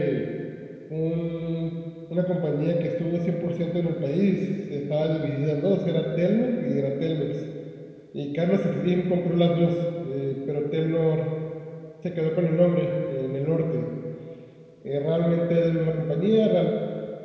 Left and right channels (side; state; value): both; identical; correlation 1.00